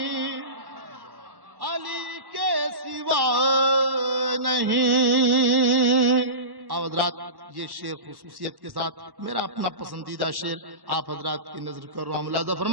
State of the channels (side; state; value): left; late; 1.1 ms